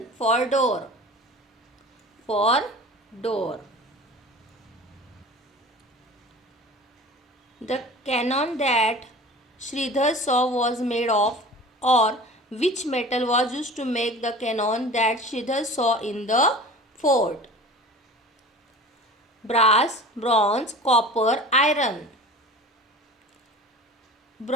for door. For door. The cannon that Sridhar saw was made of, or which metal was used to make the cannon that Sridhar saw in the fort? Brass, bronze, copper, iron.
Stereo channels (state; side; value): normal; both; correlation 0.39